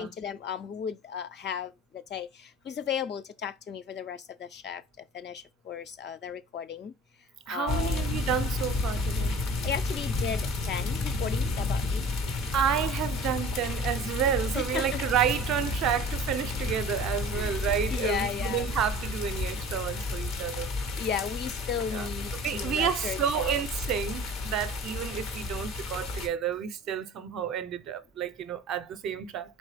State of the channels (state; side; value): normal; both; correlation 0.43